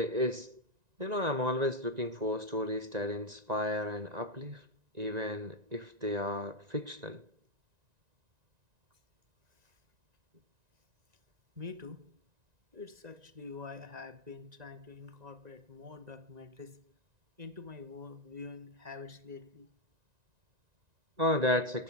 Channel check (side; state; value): left; late; 1.9 ms